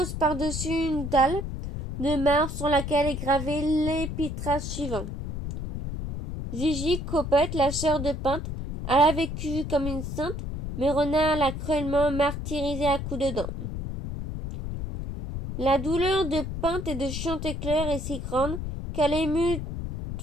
par-dessus une dalle de marbre sur laquelle est gravé l'épitaphe suivant. Gigi Copette, la sœur de Pinte, elle a vécu comme une sainte, mais Renard l'a cruellement martyrisée à coups de dents. La douleur de Pinte et de Chanticleer est si grande qu'elle émut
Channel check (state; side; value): noise; left; rumble, 5 dB below the sound